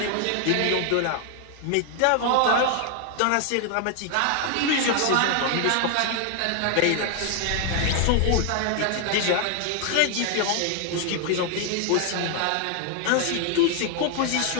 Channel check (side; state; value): both; different; correlation 0.00